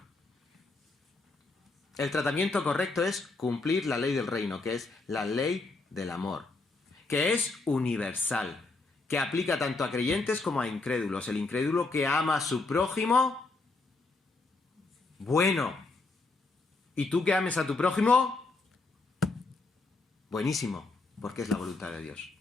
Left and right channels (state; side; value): quieter; right; 3.5 dB